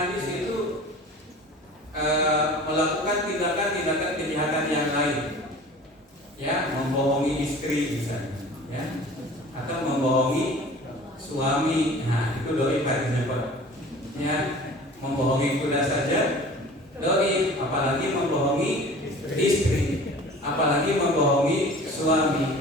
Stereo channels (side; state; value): both; normal; correlation 0.43